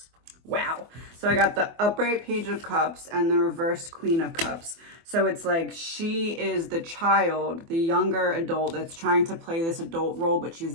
Wow. So I got the upright page of cups and the reversed queen of cups. So it's like she is the child, the younger adult that's trying to play this adult role, but she's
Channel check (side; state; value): left; late; 24 ms